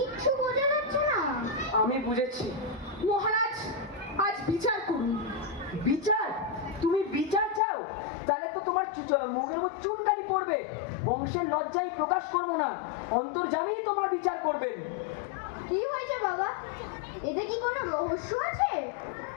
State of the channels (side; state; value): right; drops out; at 7.6 s